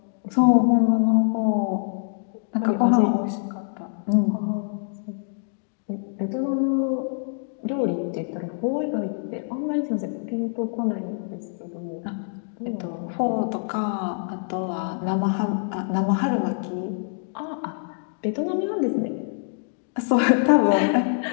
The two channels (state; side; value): silent; right; digital silence